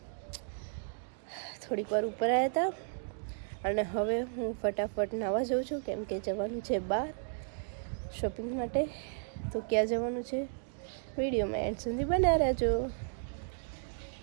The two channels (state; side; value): silent; left; digital silence